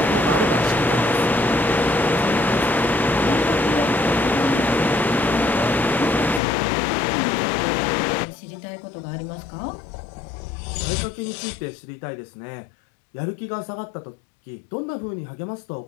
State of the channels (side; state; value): right; drops out; at 6.4 s